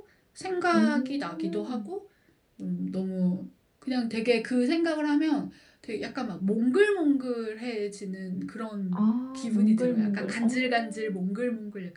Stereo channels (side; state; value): both; identical; correlation 1.00